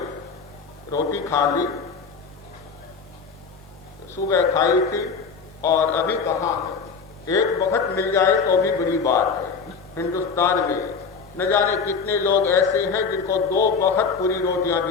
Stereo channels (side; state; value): right; quieter; 5.3 dB